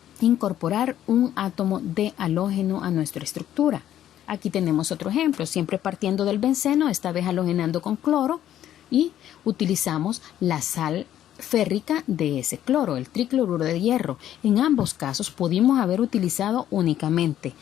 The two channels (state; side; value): quieter; right; 11.5 dB